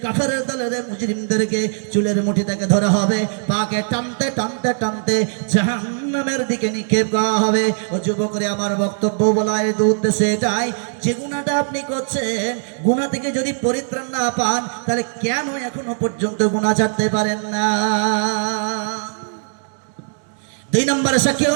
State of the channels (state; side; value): silent; left; digital silence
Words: কাফেরের দলের মুজরিমদেরকে চুলের মুঠি থেকে ধরা হবে, পাকে টানতে টানতে টানতে জাহান্নামের দিকে নিক্ষেপ করা হবে। ও যুবকরে, আমার বক্তব্য বলার উদ্দেশ্যে এটাই, যে গুনাহটা আপনি করছেন, গুনাহ থেকে যদি পরিত্রাণ না পান, তাহলে কেন এখনো পর্যন্ত গুনাহ ছাড়তে পারেন না? 2 নম্বরের সাক্ষী